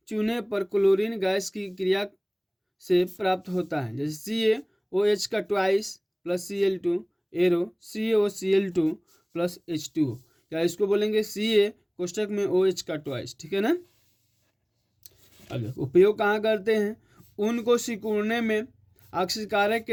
चूने पर क्लोरीन गैस की क्रिया से प्राप्त होता है। जैसे CaOH का twice plus Cl2 arrow CaOCl2 plus H2O, या इसको बोलेंगे Ca कोष्टक में OH का ट्वाइस, ठीक है ना। अब उपयोग कहाँ करते हैं, ऊन को सिकुड़ने में ऑक्सीकारक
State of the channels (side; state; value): both; identical; correlation 1.00